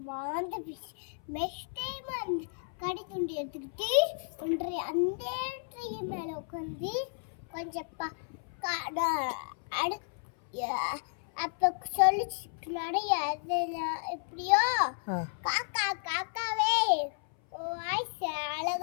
வாழ்ந்து நெக்ஸ்ட் டைம் அந்த கறி துண்டு எடுத்துக்கிட்டு ஒன்றை அந்த ட்ரீ மேல உட்காந்து கொஞ்சம் அப்ப சொல்லிச்சு நிறைய எப்படியோ காக்கா காக்காவே வாய்ஸ்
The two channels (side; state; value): right; silent; 56 dB below the other